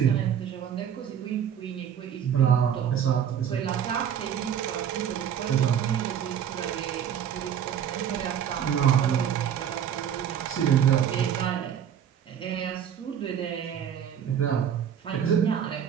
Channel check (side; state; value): left; quieter; 9.0 dB